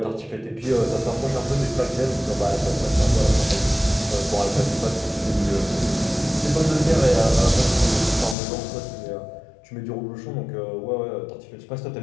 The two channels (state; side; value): drops out; right; at 8.3 s